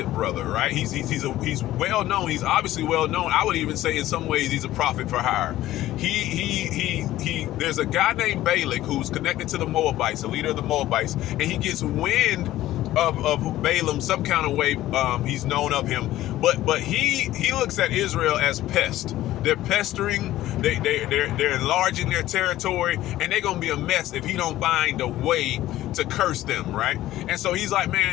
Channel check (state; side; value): quieter; right; 14.8 dB